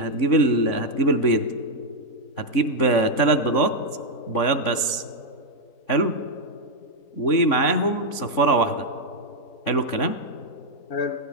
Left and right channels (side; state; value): right; late; 3.7 ms